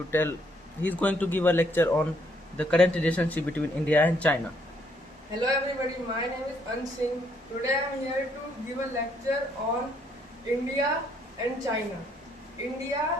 give a lecture on the current relationship between India and China. Hello everybody, my name is Ansing. Today I am here to give a lecture on India and China.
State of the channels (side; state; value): both; normal; correlation 0.69